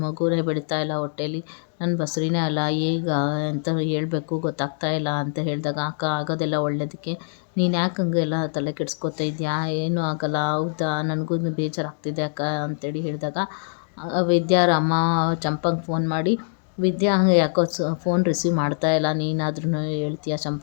ಮಗುನೇ ಬೆಳೀತಾ ಇಲ್ಲ ಹೊಟ್ಟೇಲಿ, ನನ್ನ ಬಸ್ರಿನೇ ಅಲ್ಲ, ಈಗ ಅಂತ ಹೇಳಬೇಕು ಗೊತ್ತಾಗ್ತಾ ಇಲ್ಲ ಅಂತ ಹೇಳಿದಾಗ, ಅಕ್ಕ ಆಗೋದೆಲ್ಲ ಒಳ್ಳೇದಕ್ಕೆ, ನೀನು ಯಾಕೆ ಹಂಗೆಲ್ಲ ತಲೆ ಕೆಡಿಸ್ಕೊತಾ ಇದೆಯಾ, ಏನೂ ಆಗಲ್ಲ, ಹೌದಾ, ನನಗೂ ಬೇಜಾರಾಗ್ತಿದೆ ಅಕ್ಕ ಅಂತೇಳಿ ಹೇಳಿದಾಗ, ವಿದ್ಯಾರ ಅಮ್ಮ ಚಂಪಂಗೆ ಫೋನ್ ಮಾಡಿ, ವಿದ್ಯಾ ಹಂಗೆ ಯಾಕೋ ಫೋನ್ ರಿಸೀವ್ ಮಾಡ್ತಾ ಇಲ್ಲ, ನೀನಾದ್ರೂ ಹೇಳ್ತೀಯಾ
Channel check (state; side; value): silent; right; digital silence